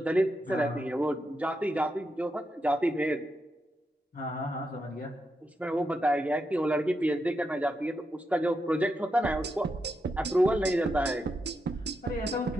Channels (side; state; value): both; normal; correlation 0.84